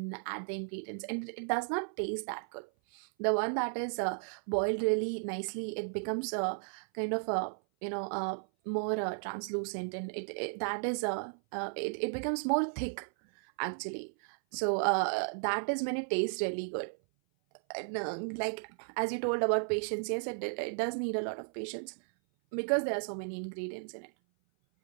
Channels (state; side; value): silent; left; 55 dB below the other